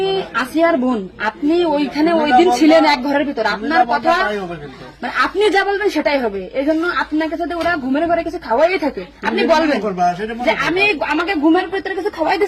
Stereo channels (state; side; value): identical; both; correlation 1.00